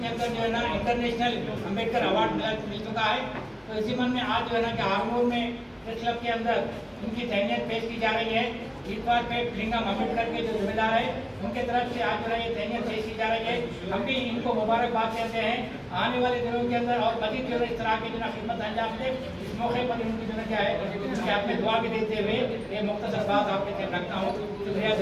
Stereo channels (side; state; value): both; identical; correlation 1.00